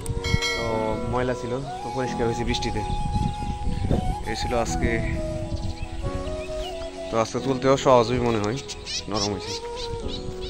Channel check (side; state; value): both; identical; correlation 1.00